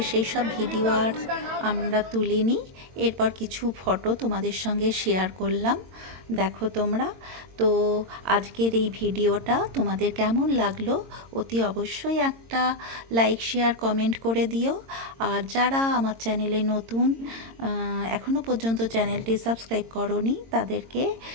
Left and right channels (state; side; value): late; left; 22 ms